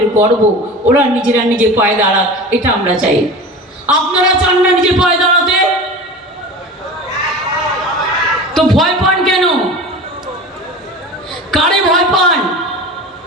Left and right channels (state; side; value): normal; both; correlation 0.34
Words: গর্ব, ওরা নিজেরা নিজে পায়ে দাঁড়াক, এটা আমরা চাই। আপনারা চান না নিজে পায়ে দাঁড়াতে? তো ভয় পান কেন? কারে ভয় পান?